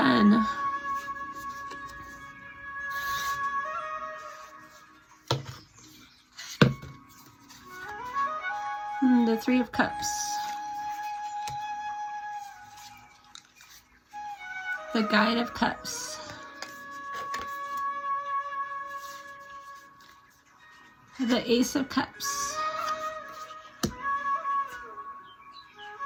and the 3 of Cups, the Guide of Cups, the Ace of Cups,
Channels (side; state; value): both; identical; correlation 1.00